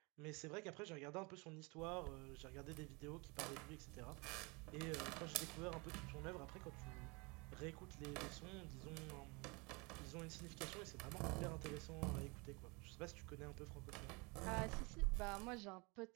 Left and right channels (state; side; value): quieter; left; 28.4 dB